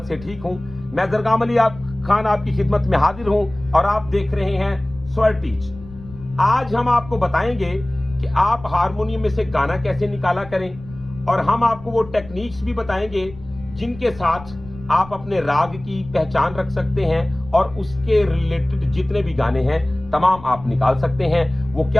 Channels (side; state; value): left; noise; rumble, 18 dB below the sound